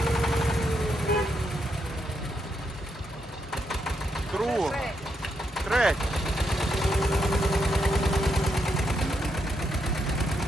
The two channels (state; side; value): normal; both; correlation 0.80